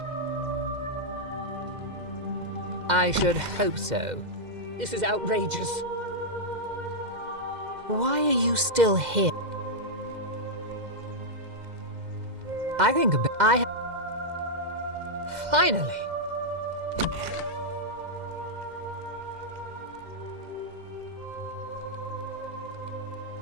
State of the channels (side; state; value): left; late; 2.0 ms